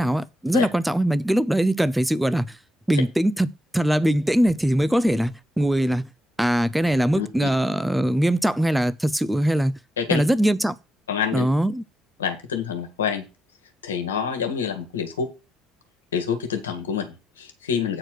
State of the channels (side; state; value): both; normal; correlation 0.82